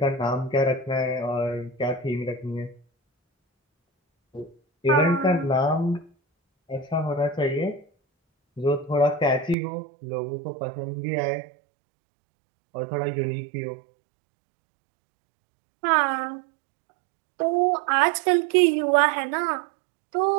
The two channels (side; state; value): left; drops out; at 9.6 s